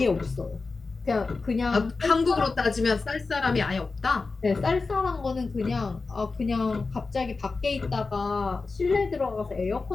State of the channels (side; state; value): right; quieter; 4.0 dB